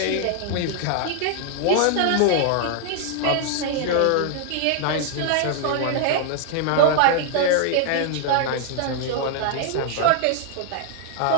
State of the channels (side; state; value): both; different; correlation 0.00